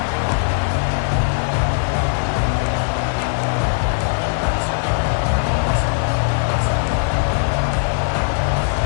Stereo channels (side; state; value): right; silent; digital silence